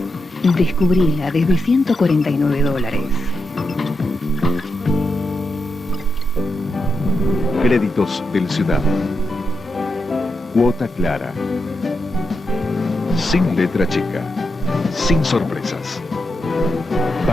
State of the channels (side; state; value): both; normal; correlation 0.85